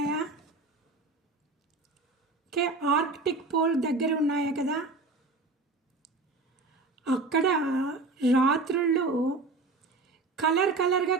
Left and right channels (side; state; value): left; quieter; 3.6 dB